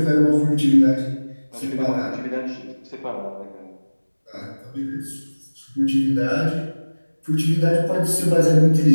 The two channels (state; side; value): inverted; both; correlation -1.00